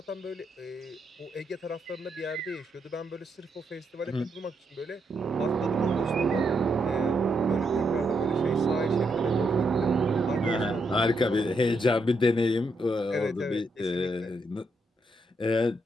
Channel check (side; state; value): both; normal; correlation 0.79